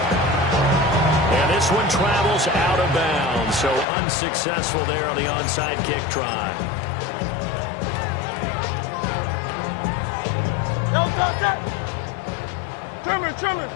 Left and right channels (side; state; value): right; drops out; at 3.9 s